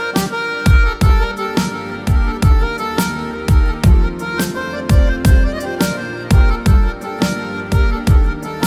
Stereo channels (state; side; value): identical; both; correlation 1.00